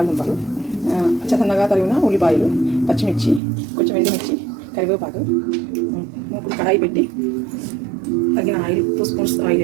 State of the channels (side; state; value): left; drops out; at 3.4 s